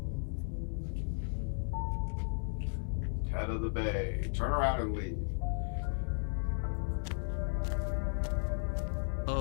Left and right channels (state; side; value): silent; right; 54 dB below the other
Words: Head of the bay. Turn around and leave.